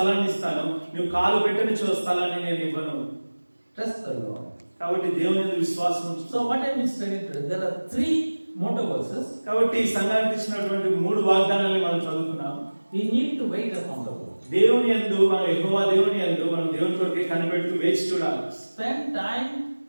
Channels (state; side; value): inverted; both; correlation -1.00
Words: ఇస్తాను, నువ్వు కాలు పెట్టని స్థలాన్ని నేను ఇవ్వను. Trust the Lord. కాబట్టి దేవుని యందు విశ్వాసం ఉంచు. So what I will study today, there are 3 motto verses. కాబట్టి ఈ సంఘానికి ఇచ్చినటువంటి 3 వాగ్దానాలను మనం చదువుకున్నాం. We need to wait upon the Lord. దేవుని యందు మనం యెహోవా దేవుని యందు మనం దేవుని కొరకే కనిపెడుతూ వేచి చూడాలి. Spend time